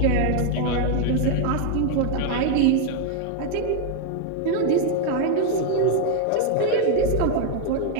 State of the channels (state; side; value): different; both; correlation 0.00